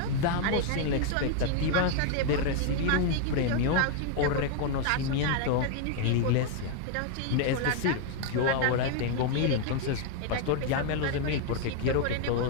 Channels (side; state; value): both; different; correlation 0.01